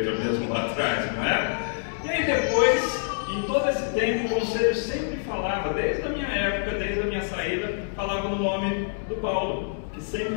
mesmo lá atrás, não é? E aí depois, em todo esse tempo, o conselho sempre falava, desde a minha época, desde a minha saída, falava no nome do Paulo, que sempre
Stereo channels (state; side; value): silent; right; 61 dB below the other